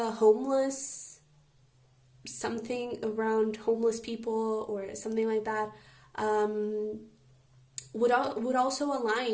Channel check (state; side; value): identical; both; correlation 1.00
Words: homeless, something around homeless people or something like that, would also